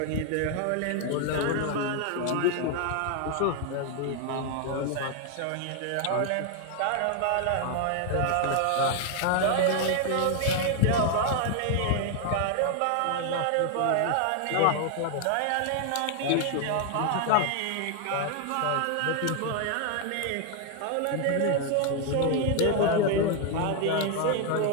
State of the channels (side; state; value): both; different; correlation 0.00